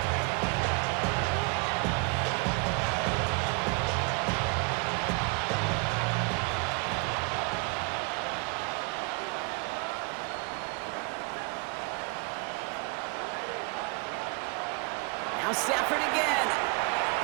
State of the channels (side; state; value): left; quieter; 31.8 dB